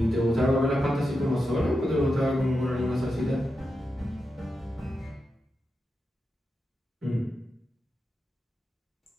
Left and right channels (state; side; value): normal; both; correlation 0.88